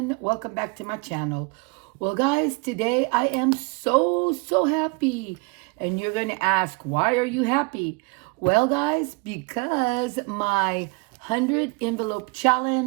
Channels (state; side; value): quieter; left; 29.1 dB